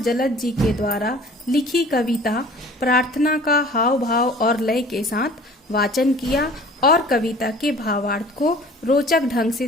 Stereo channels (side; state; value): both; normal; correlation 0.47